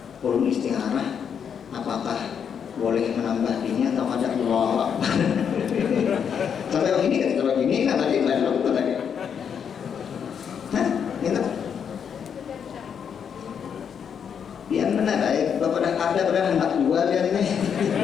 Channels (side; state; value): right; quieter; 7.5 dB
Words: perlu istikharah. Apakah boleh menambah ini atau ada Allah? Sampai begini kan, kalau begini kan tadi lain lakukan lagi. Hah? Gitu? Biar benar baik. Bapak dah ada pada hendak jual dia ini.